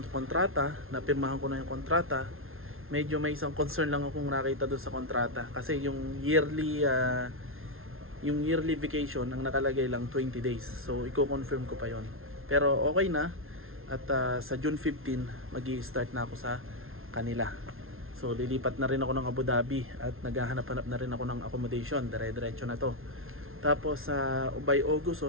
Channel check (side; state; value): left; late; 0.61 ms